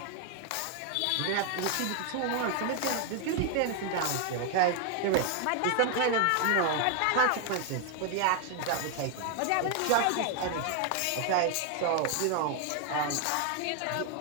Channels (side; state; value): both; different; correlation 0.00